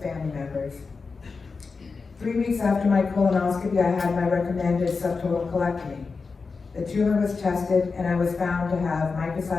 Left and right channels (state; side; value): quieter; right; 4.6 dB